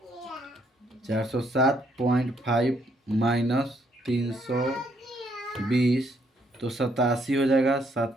407.5 माइनस 320, तो 87 हो जाएगा।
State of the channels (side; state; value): both; normal; correlation 0.71